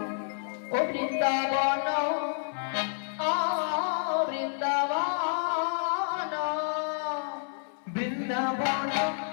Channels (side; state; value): right; silent; 58 dB below the other